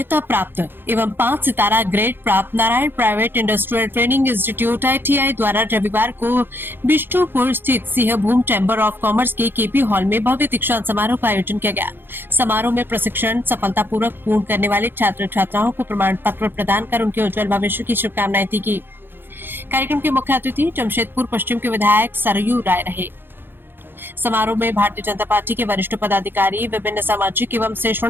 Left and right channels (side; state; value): left; late; 0.10 ms